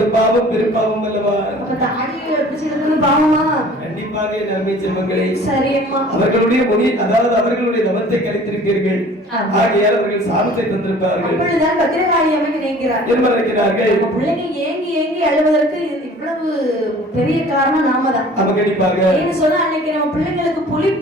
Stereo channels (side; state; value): both; normal; correlation 0.48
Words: பாவம் பெரும்பாவம் அல்லவா? அப்ப தாடியை பிடிச்சு இழுக்கிறது பாவமா? கண்டிப்பாக நன்மை செல்வங்களே. சரி அம்மா. அவர்களுடைய முனி அதாவது அவர்களுடைய தவத்தை கலைத்திருப்பீர்கள், ஆகையால் அவர்கள் சாபத்தை தந்திருப்பார்கள். அப்பொழுதுதான் பத்திரகாளி அம்மை நினைக்கிறார் என்ன நினைக்கிறார்கள்? நம்ம பிள்ளைங்க ஏங்கி ஏங்கி அழுவதற்கு இவ்வளவு பெரிய காரணம் நாம தான். நம்ம கண்டிப்பாக ஏன்னு சொன்னா அன்னைக்கு நம்ம பிள்ளைங்களுக்கு